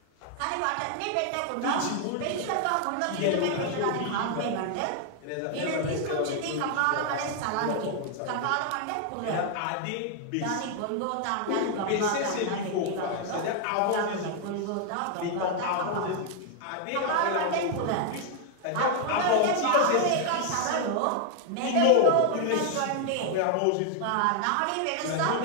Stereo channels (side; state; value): both; different; correlation 0.00